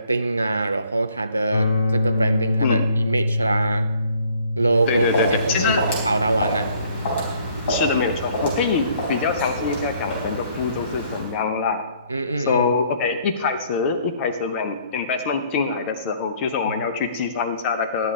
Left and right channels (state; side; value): inverted; both; correlation -0.60